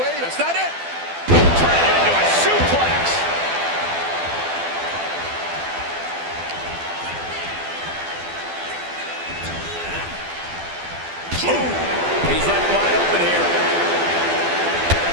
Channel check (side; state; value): left; late; 12 ms